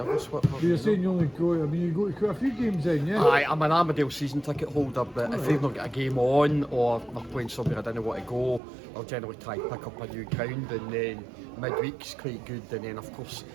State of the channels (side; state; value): left; drops out; at 8.6 s